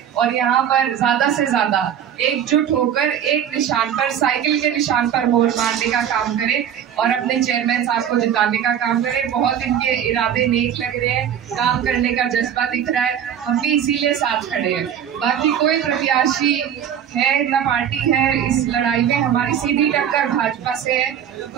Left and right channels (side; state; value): left; quieter; 9.2 dB